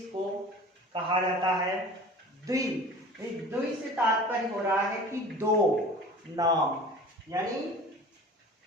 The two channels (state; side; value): normal; both; correlation 0.41